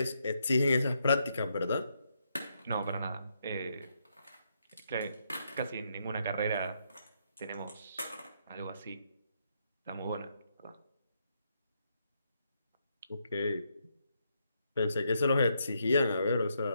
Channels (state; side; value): inverted; both; correlation -0.78